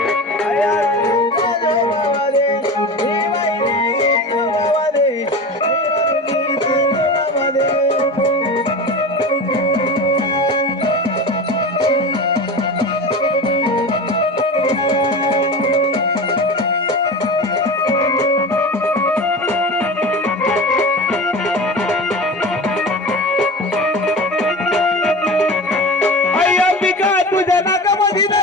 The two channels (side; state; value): both; normal; correlation 0.29